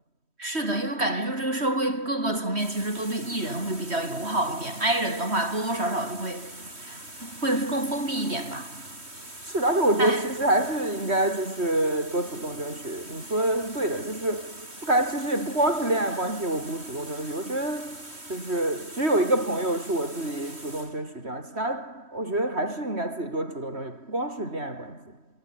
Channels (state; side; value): late; left; 3.1 ms